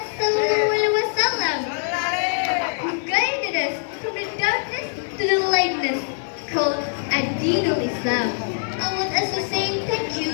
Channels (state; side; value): silent; right; 63 dB below the other